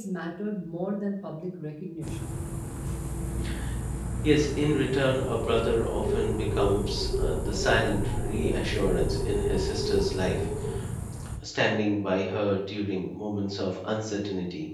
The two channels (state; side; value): identical; both; correlation 1.00